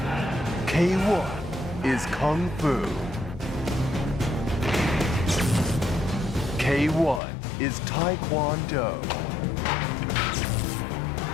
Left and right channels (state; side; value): drops out; right; at 7.2 s